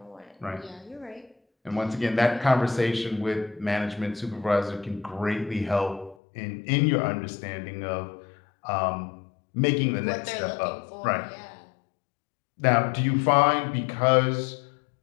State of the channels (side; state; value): right; drops out; at 6.2 s